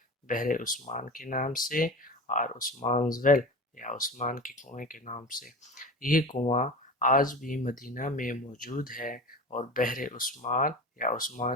عثمان کے نام سے اور عثمان's well یا عثمان کے کنویں کے نام سے یہ کنواں آج بھی مدینہ میں موجود ہے اور بحر عثمان یا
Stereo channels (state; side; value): normal; both; correlation 0.32